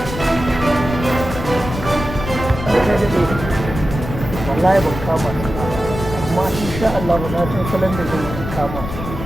wallahi ban kama su ba amma insha Allah ba na san salon da zai kama su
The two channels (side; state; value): left; noise; rumble, 8 dB below the sound